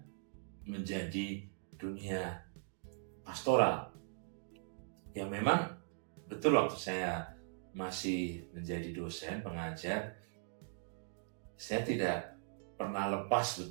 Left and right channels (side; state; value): left; silent; digital silence